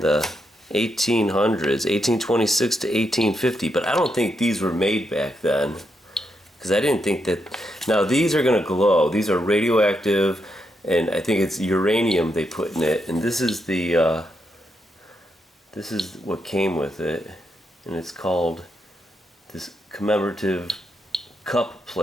1800s, 1826 to 1850, but I don't think these were made back then, because I didn't think that. Now these are going to glow. These are radioactive, and I think it's uranium they put in it, and this is the this is what came with it, and it's called this commemorative cup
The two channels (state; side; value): normal; both; correlation 0.82